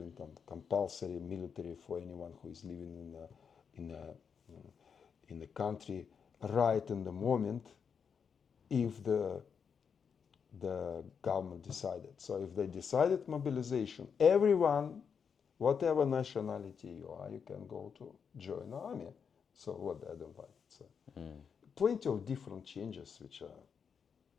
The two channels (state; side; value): quieter; right; 6.6 dB